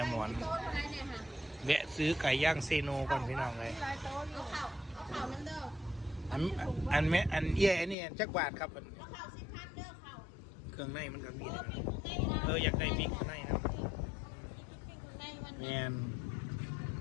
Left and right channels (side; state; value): right; drops out; at 8.0 s